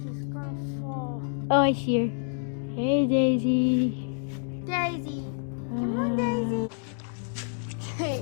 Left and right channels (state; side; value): silent; right; digital silence